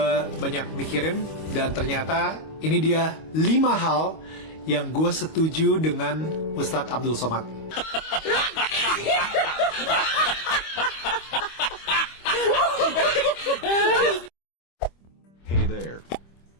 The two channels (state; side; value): late; right; 25 ms